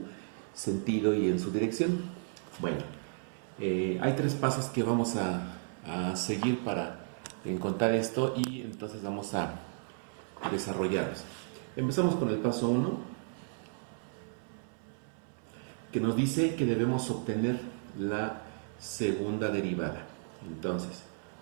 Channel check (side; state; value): left; silent; 55 dB below the other